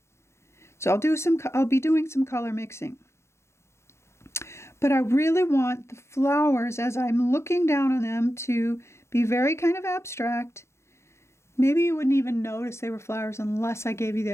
So I'll be doing some color mixing. But I really want the flowers, as I'm looking down on them, to be very kind of abstract. Maybe you wouldn't even notice they were flowers unless I gave you the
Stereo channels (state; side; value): late; right; 0.13 ms